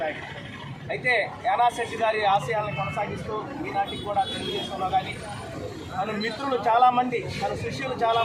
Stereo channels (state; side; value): identical; both; correlation 1.00